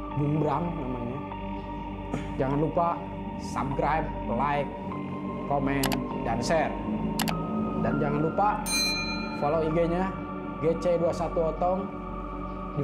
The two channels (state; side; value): identical; both; correlation 1.00